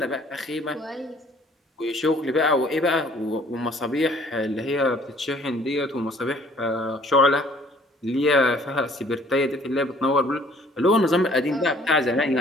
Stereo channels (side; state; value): both; normal; correlation 0.57